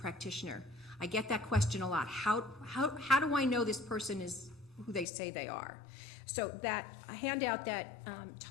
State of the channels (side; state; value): right; drops out; at 5.1 s